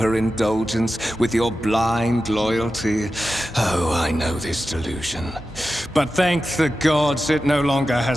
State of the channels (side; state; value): both; normal; correlation 0.92